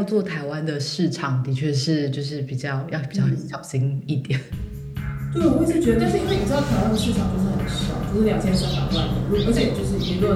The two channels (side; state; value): both; identical; correlation 1.00